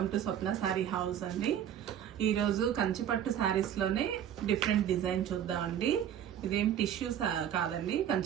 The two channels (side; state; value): left; quieter; 10.0 dB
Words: to Swapna sorry house అండి. ఈరోజు కంచిపట్టు శారీస్లోనే డిఫరెంట్ డిజైన్ చూద్దామండి. ఇదేం టిష్యూ కాదండి,